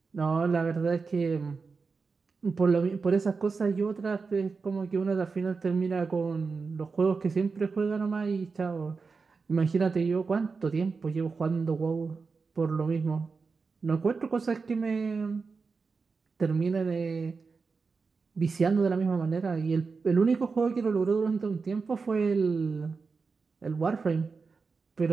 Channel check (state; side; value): quieter; left; 4.7 dB